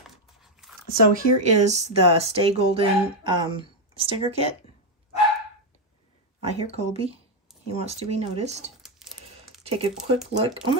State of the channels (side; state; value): both; normal; correlation 0.03